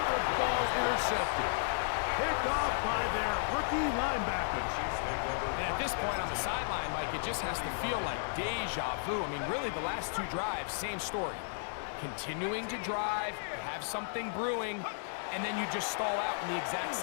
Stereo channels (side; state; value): right; silent; digital silence